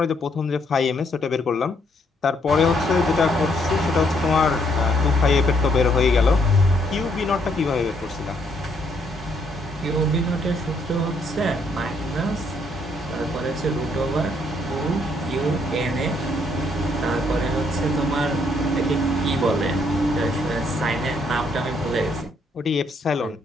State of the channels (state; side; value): normal; both; correlation 0.71